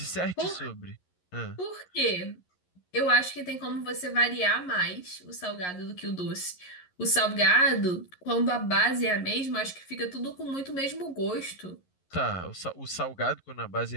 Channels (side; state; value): right; late; 11 ms